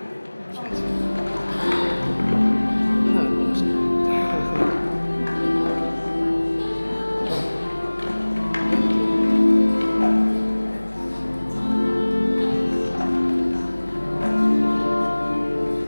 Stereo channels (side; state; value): both; inverted; correlation -1.00